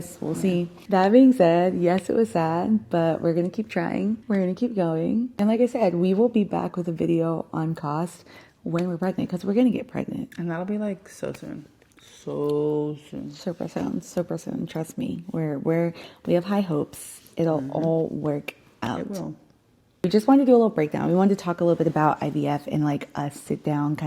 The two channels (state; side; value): identical; both; correlation 1.00